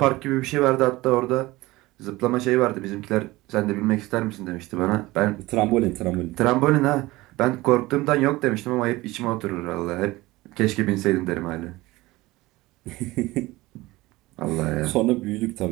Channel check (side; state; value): left; quieter; 19.6 dB